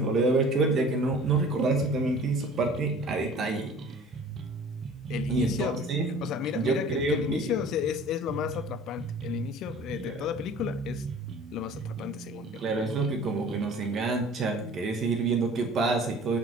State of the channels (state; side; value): normal; both; correlation 0.46